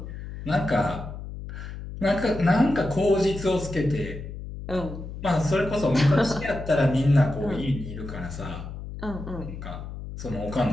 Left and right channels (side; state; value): left; noise; hum, 10 dB below the sound